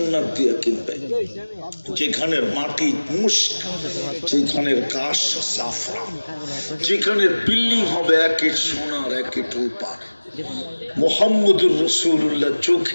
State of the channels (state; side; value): inverted; both; correlation -1.00